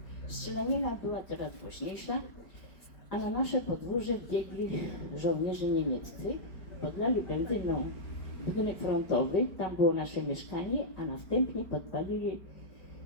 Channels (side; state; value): right; late; 4.9 ms